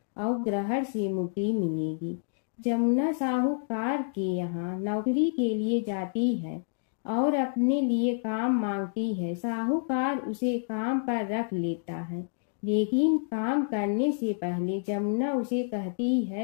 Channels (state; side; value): silent; right; digital silence